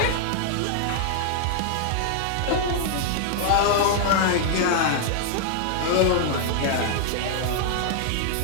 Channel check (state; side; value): different; both; correlation 0.00